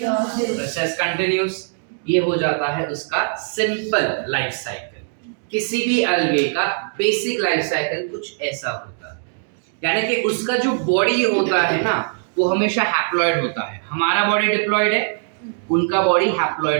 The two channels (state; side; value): silent; left; digital silence